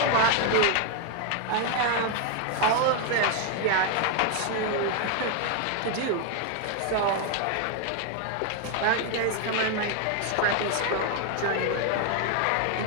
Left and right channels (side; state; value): both; different; correlation 0.01